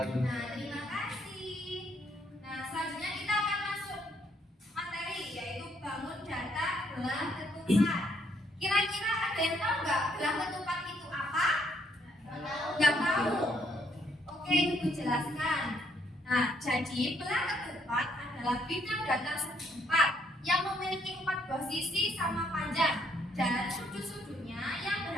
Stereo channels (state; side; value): normal; both; correlation 0.70